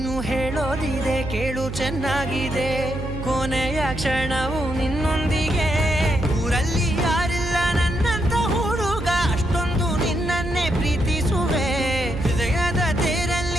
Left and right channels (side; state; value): right; noise; hum, 7 dB below the sound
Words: ಹೇಳೋದಿದೆ ಕೇಳು ಚೆನ್ನಾಗಿದೆ ಕೊನೆಯ ಕ್ಷಣವು ನಿನ್ನೊಂದಿಗೆ ಊರಲ್ಲಿ ಯಾರಿಲ್ಲ ನನ್ನಂತ ಹುಡುಗ ಅಷ್ಟೊಂದು ನಿನ್ನನ್ನೇ ಪ್ರೀತಿಸುವೆ ಹೃದಯದ